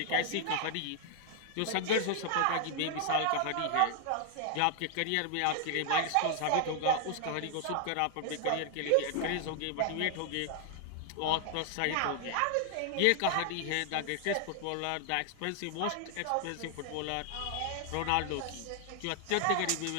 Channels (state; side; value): different; both; correlation 0.00